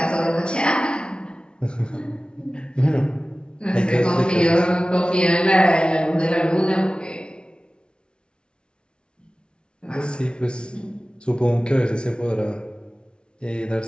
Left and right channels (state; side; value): late; right; 0.056 ms